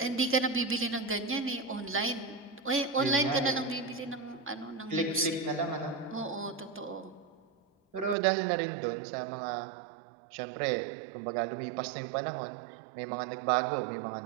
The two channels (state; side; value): drops out; left; at 8.2 s